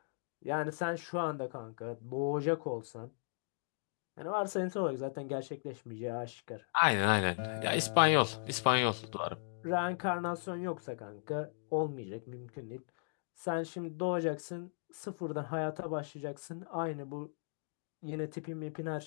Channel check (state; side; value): silent; right; digital silence